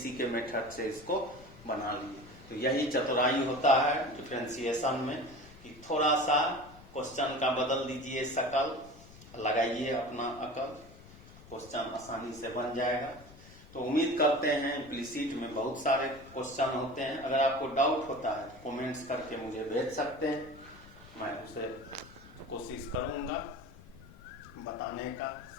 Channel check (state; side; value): noise; left; rumble, 20 dB below the sound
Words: के मेथड से इसको बना लिए। तो यही चतुराई होता है डिफरेंशिएशन में, कि थोड़ा सा क्वेश्चन का बदल दीजिए शकल, लगाइए अपना अकल, क्वेश्चन आसानी से बन जाएगा। तो उम्मीद करते हैं, इम्प्लीसिट में बहुत सारे क्वेश्चन होते हैं, अगर आपको डाउट होता है कमेंट्स करके मुझे भेज सकते हैं, मैं उसे कोशिश करूंगा बताने का,